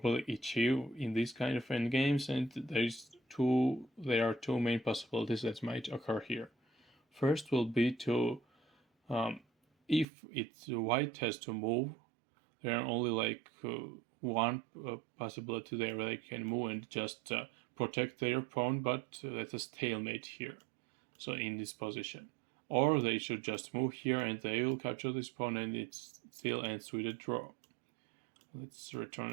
achieve in these kind of endgames, and there are two main possibilities that might occur here. First will be to if it's white has to move, there are only like one possibility there where they can move and just protect their pawn, but that's a stalemate here. So in this position. Or they should just move here and they will capture this pawn, and it still ends with a draw. Let's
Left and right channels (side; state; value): left; drops out; at 10.1 s